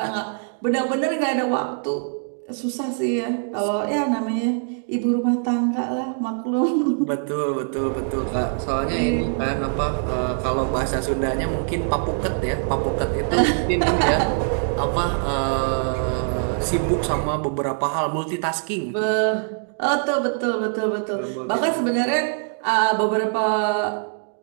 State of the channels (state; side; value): silent; left; digital silence